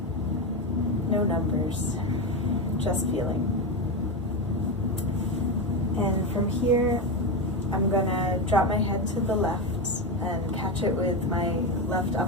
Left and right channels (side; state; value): both; normal; correlation 0.14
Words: No numbers, just feeling. And from here, I'm gonna drop my head to the left and catch it with my left